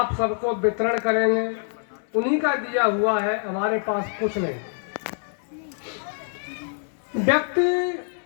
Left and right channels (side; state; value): right; silent; 62 dB below the other